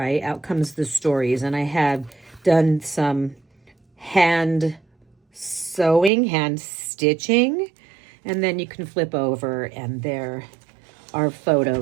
Out comes the stories. And I have done some hand sewing, hand stitching, and then you can flip over and there are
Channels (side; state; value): left; drops out; at 6.1 s